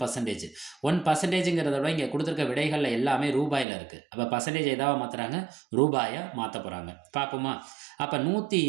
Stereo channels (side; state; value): left; drops out; at 3.7 s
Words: 1%ங்கிறத விட இங்கே கொடுத்துருக்க விடைகளில் எல்லாமே ரூபாயில் இருக்குது. அப்போ பர்சன்டேஜ் எதாவது மாற்றுறாங்க? ரூபாயை மாற்ற போகிறாங்க. பார்ப்போமா? அப்போ